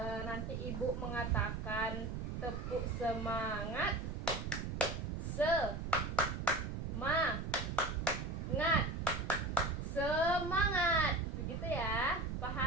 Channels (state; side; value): noise; right; rumble, 4 dB below the sound